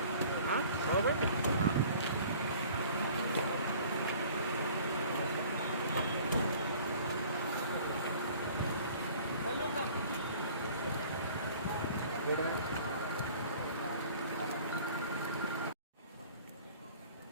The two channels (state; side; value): inverted; both; correlation -0.49